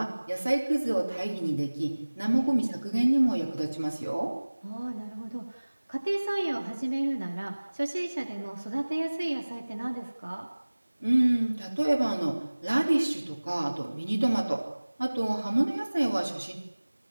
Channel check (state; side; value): inverted; both; correlation -1.00